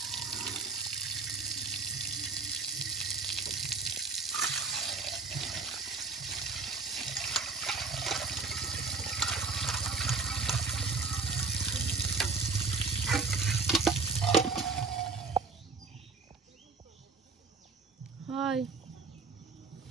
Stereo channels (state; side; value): quieter; left; 4.3 dB